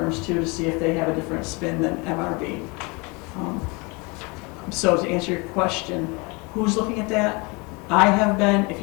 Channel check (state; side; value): quieter; right; 28.3 dB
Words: too, to see if they have a different spin than MRB. So to answer your question, who's looking at that? I have been. If